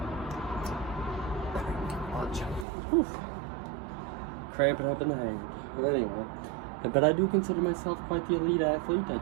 Whew. Cramping up in the hand. Anyway. But I do consider myself quite the elite athlete. I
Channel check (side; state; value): left; drops out; at 2.7 s